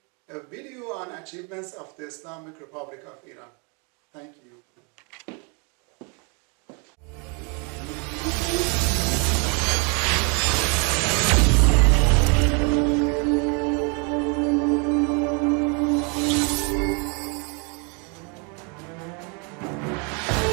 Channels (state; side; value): quieter; left; 34.5 dB